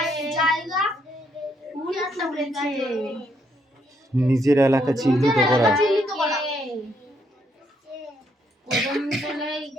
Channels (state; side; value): normal; both; correlation 0.74